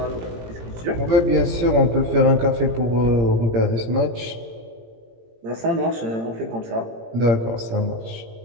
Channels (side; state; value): left; late; 18 ms